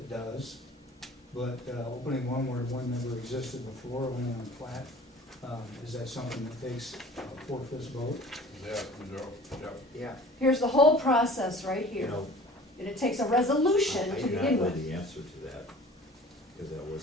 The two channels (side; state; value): both; normal; correlation 0.45